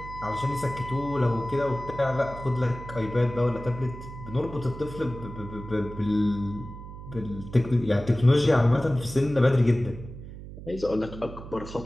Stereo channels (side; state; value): right; noise; hum, 13 dB below the sound